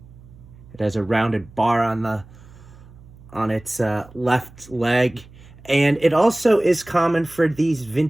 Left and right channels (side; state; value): right; noise; hum, 22 dB below the sound